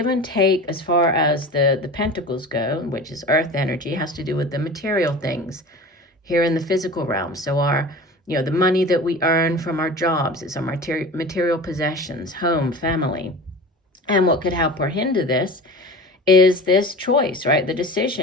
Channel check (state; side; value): normal; both; correlation 0.35